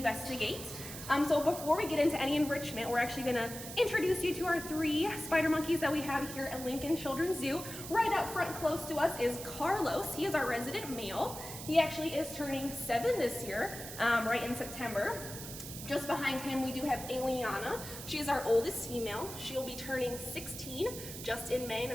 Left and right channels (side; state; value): right; noise; hiss, 10 dB below the sound